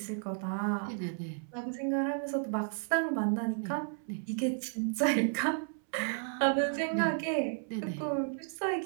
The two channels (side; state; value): left; silent; 56 dB below the other